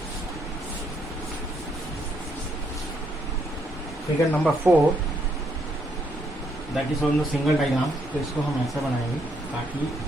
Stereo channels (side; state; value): both; normal; correlation 0.74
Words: figure number 4, that is on the single diagram. तो इसको हम ऐसा बनाएंगे ताकि,